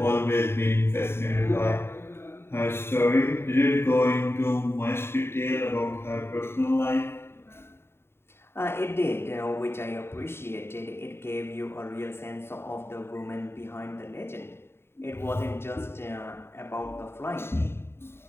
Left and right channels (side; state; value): right; late; 0.12 ms